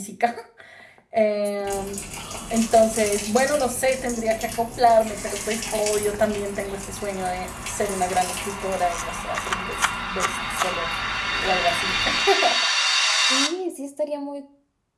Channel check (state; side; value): identical; both; correlation 1.00